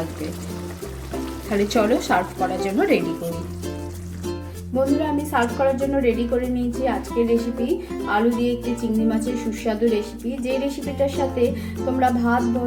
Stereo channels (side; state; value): both; identical; correlation 1.00